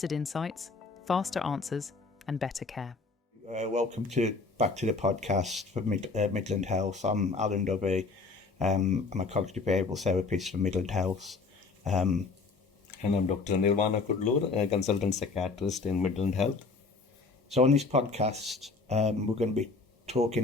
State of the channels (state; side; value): quieter; right; 4.1 dB